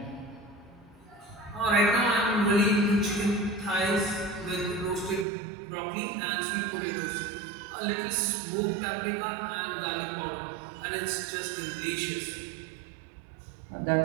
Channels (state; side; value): drops out; left; at 5.2 s